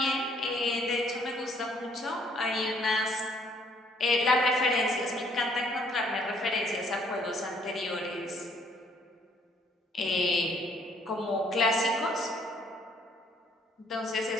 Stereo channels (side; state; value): both; normal; correlation 0.64